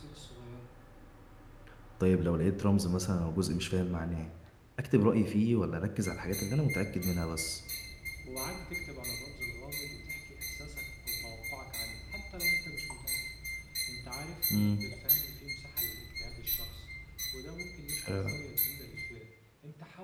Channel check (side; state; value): both; identical; correlation 1.00